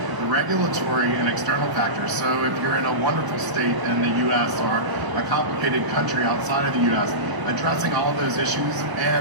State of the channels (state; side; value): late; left; 1.0 ms